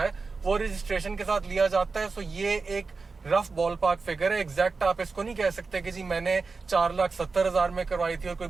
है वो रजिस्ट्रेशन के साथ लिया जाता है। सो ये एक रफ बॉल पार्क फिगर है। एग्जैक्ट आप इसको नहीं कह सकते कि जी मैंने 4,70,000 में करवाई थी और कोई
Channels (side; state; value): left; quieter; 4.3 dB